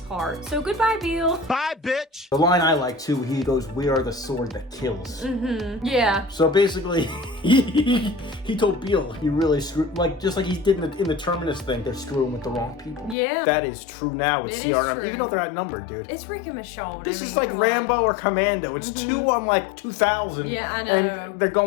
So goodbye, Beal. Bye, bitch. The line I like too, he goes, we are the sword that kills. Yeah. So basically, he told Beal he really screwed, like just like he did in the Terminus thing, they're screwing with the wrong people. Yeah. That is true now with It is CRM, true. even though they're outnumbered, dude. It's Rick and Michonne. This is like Rambo or Commando. It's 2 on like 2,000. Yeah, I know. And they're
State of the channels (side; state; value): right; drops out; at 13.2 s